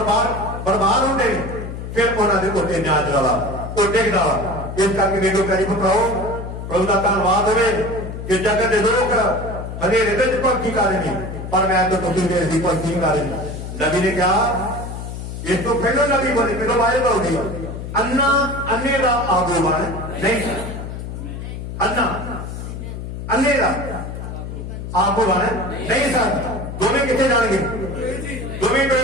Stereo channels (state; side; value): noise; left; hum, 8 dB below the sound